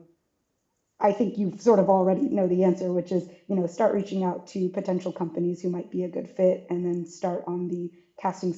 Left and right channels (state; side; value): identical; both; correlation 1.00